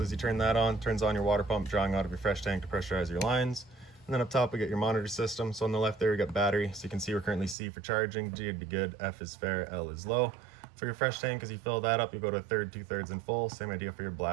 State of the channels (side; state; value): left; drops out; at 7.6 s